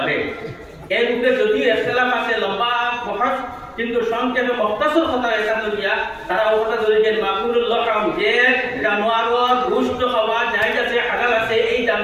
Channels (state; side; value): identical; both; correlation 1.00